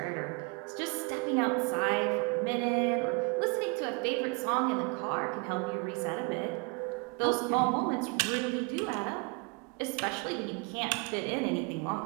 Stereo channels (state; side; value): quieter; left; 31.0 dB